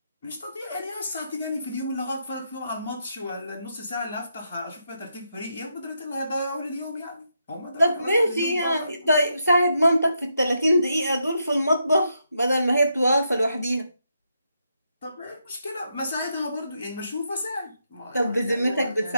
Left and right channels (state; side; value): inverted; both; correlation -0.81